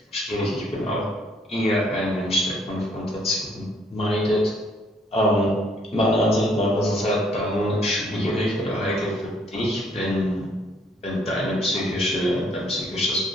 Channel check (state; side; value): normal; both; correlation 0.65